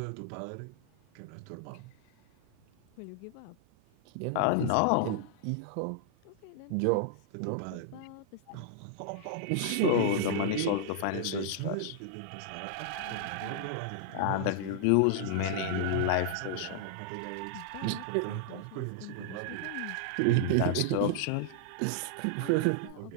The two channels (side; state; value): both; different; correlation -0.01